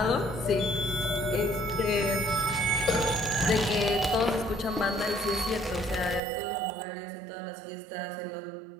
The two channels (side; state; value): left; drops out; at 6.2 s